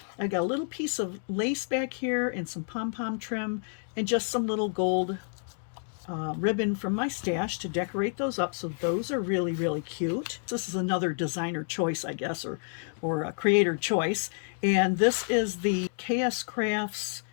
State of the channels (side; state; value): right; silent; digital silence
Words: I got a little piece of lace back here and some pom-pom trim and just some little gold ribbon from my stash to decorate those up. So those are really, really cute. This is another designer choice, I guess, or a creator choice. And this is the KSCrafts